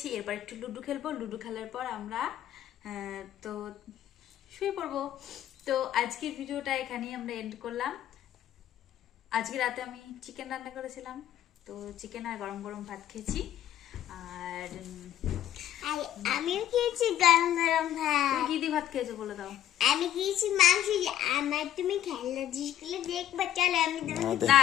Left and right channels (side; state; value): right; quieter; 11.8 dB